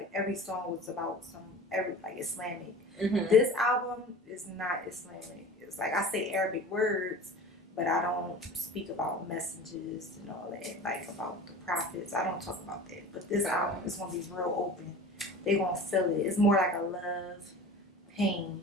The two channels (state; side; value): normal; both; correlation 0.38